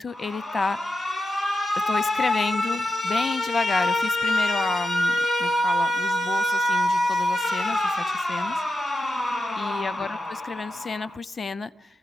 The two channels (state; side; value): normal; both; correlation 0.89